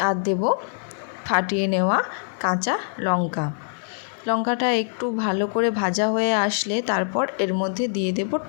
আর দেব ফাটিয়ে নেওয়া কাঁচা লঙ্কাটা একটু ভালো করে ভাজা হয়ে আসলে তারপর এর মধ্যে দিয়ে দেব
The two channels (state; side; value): silent; right; digital silence